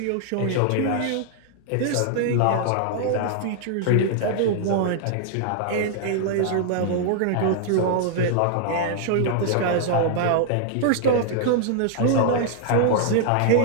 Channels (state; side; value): different; both; correlation 0.00